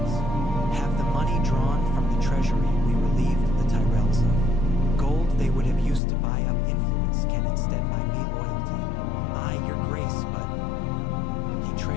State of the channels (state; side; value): drops out; right; at 6.0 s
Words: Have the money drawn from the treasury we relieved the Tyrells of. Gold they would have used to buy up influence can instead buy me loyalty. Aye, your Grace, but... He